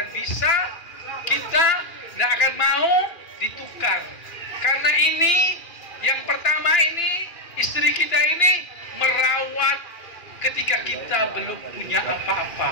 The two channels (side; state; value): right; late; 2.4 ms